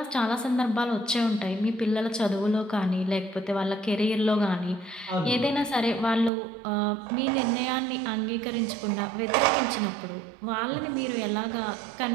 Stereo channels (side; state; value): left; drops out; at 6.3 s